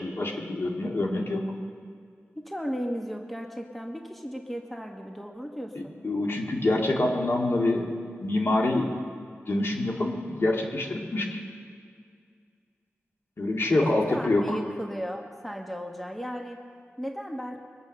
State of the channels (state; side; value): normal; both; correlation 0.90